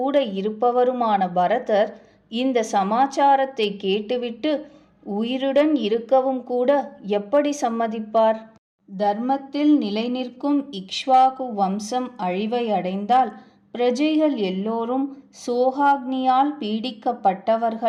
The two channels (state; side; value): identical; both; correlation 1.00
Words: இருப்பவருமான பரதர் இந்த சமாச்சாரத்தை கேட்டுவிட்டு உயிருடன் இருக்கவும் கூட எப்படி சம்மதிப்பார்? தர்மத்தில் நிலை நிற்கும் இக்ஷ்வாகு வம்சம் அழிவை அடைந்தால் பிரஜைகள் எல்லோரும் சோகாக்னியால்